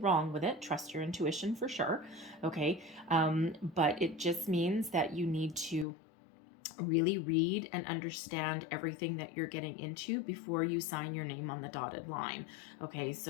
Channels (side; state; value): right; drops out; at 5.9 s